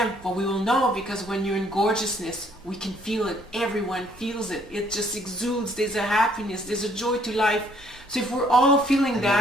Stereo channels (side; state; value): both; normal; correlation 0.64